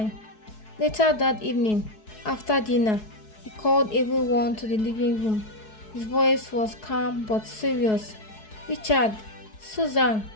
Later that evening, after dinner, he called everyone to the living room. His voice was calm but serious. "Richard, Susan,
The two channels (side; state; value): right; late; 4.7 ms